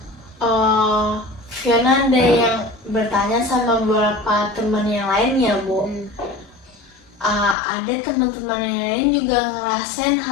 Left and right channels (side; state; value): right; drops out; at 7.6 s